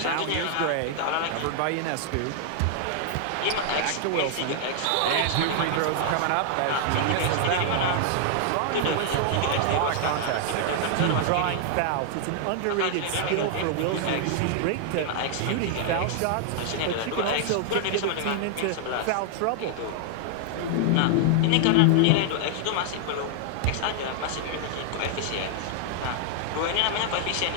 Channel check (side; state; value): both; different; correlation -0.01